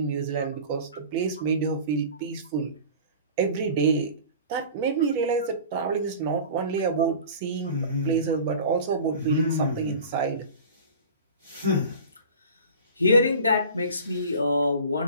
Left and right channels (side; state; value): both; inverted; correlation -0.39